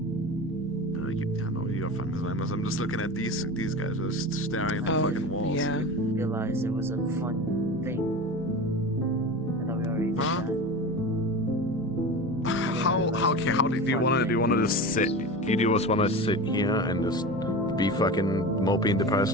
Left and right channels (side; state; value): both; normal; correlation 0.29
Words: No, you're fine, Miss Lamos. I'm just looking at these guys just staring at the fucking walls. Yeah. Realized it was a fun thing. I thought we already did Huh? that. How do you want to just sit? Do you just want to sit here and just be fucking mopey and depressed